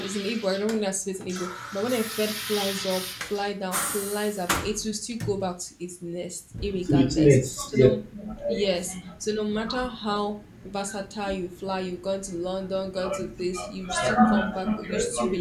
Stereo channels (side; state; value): both; identical; correlation 1.00